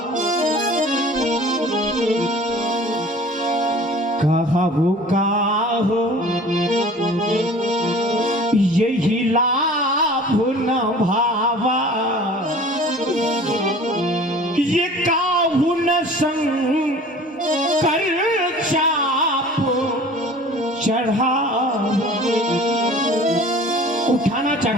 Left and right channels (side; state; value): both; normal; correlation 0.45